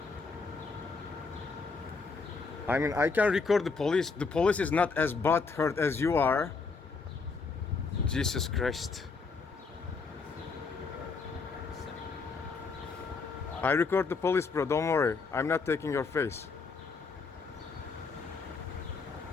I mean, I can record the police. The police is not as butthurt as you are. Jesus Christ. I record the police, bro. Don't worry. I'm not taking your face.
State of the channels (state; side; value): quieter; right; 4.6 dB